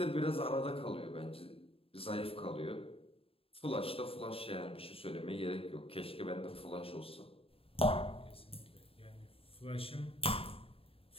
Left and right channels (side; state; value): right; late; 0.27 ms